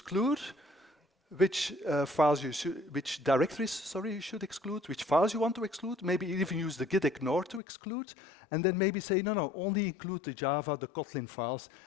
which which directories, sorry, you should exclude, which files you want to exclude, maybe even use the git ignore to exclude, and then maybe say, no, only include the Java, the Kotlin files,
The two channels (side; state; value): right; drops out; at 7.6 s